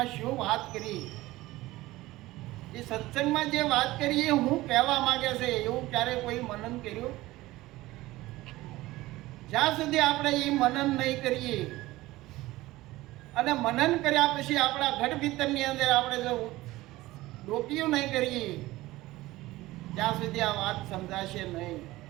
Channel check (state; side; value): quieter; left; 18.2 dB